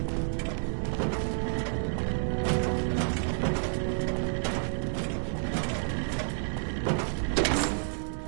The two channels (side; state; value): left; silent; digital silence